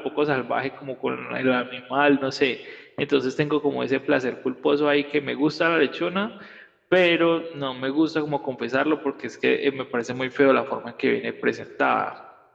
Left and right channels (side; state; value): both; identical; correlation 1.00